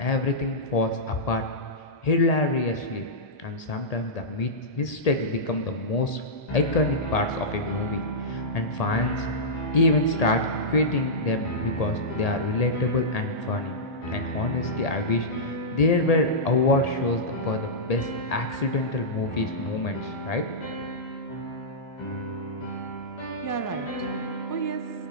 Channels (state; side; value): late; right; 1.8 ms